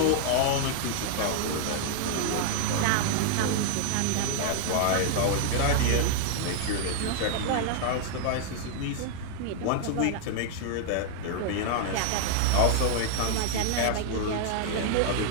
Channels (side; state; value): both; different; correlation 0.00